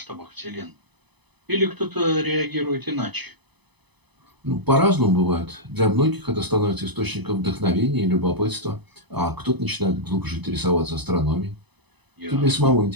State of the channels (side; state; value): left; late; 0.99 ms